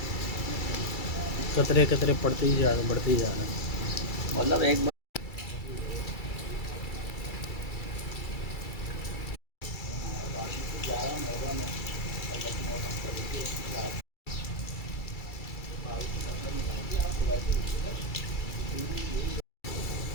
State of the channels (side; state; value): right; late; 2.3 ms